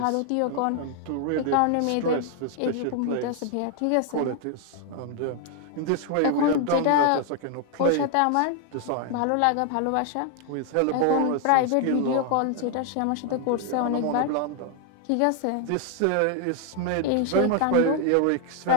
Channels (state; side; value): different; both; correlation 0.00